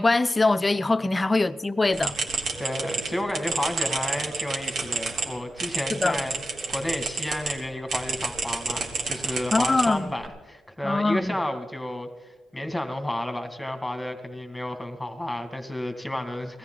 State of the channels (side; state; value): both; normal; correlation 0.92